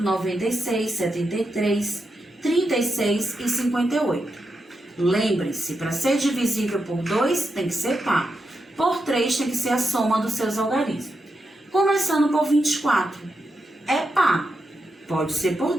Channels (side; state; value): both; normal; correlation 0.86